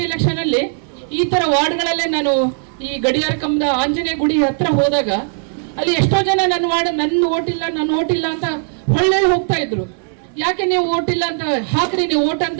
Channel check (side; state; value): left; silent; 64 dB below the other